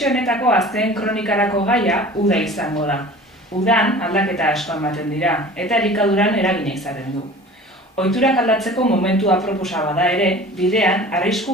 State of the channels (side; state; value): both; normal; correlation 0.42